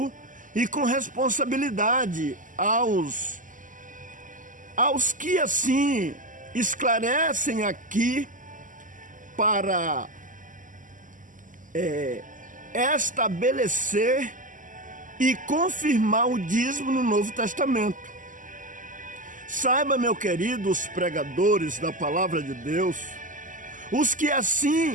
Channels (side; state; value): left; late; 0.38 ms